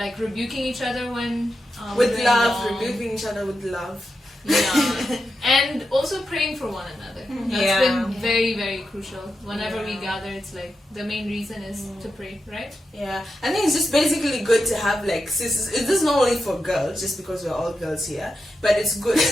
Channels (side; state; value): both; normal; correlation 0.88